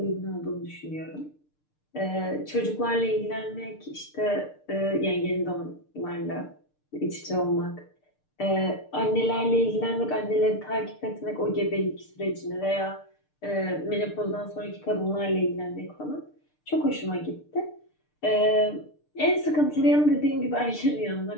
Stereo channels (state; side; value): late; right; 6.7 ms